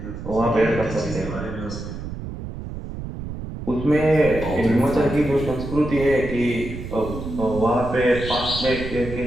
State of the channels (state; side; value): noise; right; rumble, 8 dB below the sound